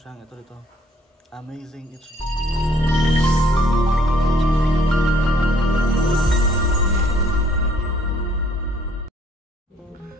ito dito. Amazing HD.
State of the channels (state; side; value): normal; both; correlation 0.62